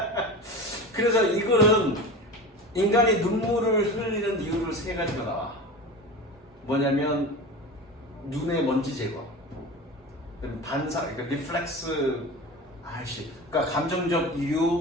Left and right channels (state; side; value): normal; both; correlation 0.31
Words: 그래서 이 글은 인간이 눈물을 흘리는 이유를 세 가지가 나와. 뭐냐면 눈의 먼지 제거, 반사, 그러니까 리플렉스, 그러니까 감정적